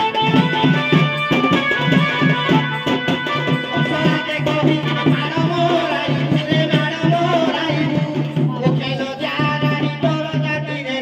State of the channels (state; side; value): identical; both; correlation 1.00